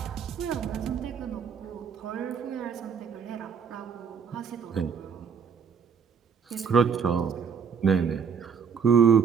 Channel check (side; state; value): left; quieter; 6.5 dB